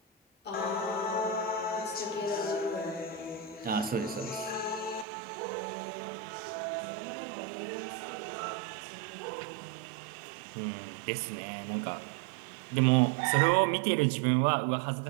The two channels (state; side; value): drops out; left; at 5.1 s